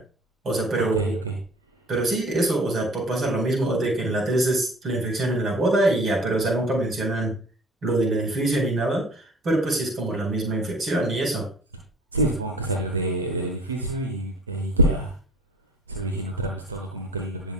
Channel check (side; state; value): both; normal; correlation 0.47